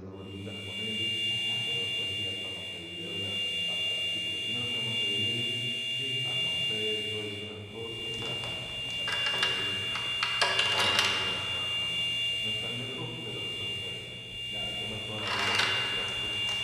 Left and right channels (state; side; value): identical; both; correlation 1.00